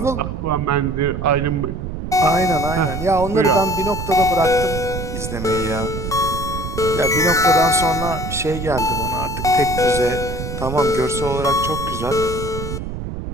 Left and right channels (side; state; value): right; noise; rumble, 6 dB below the sound